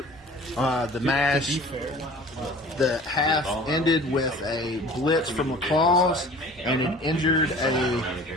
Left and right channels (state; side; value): normal; both; correlation 0.45